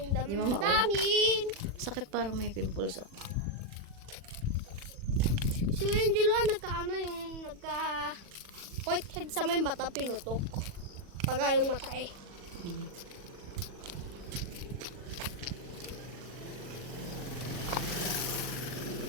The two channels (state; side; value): late; left; 40 ms